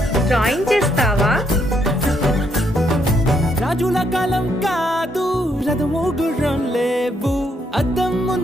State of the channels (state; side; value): normal; both; correlation 0.74